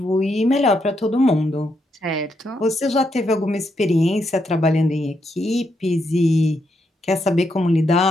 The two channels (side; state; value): both; normal; correlation 0.79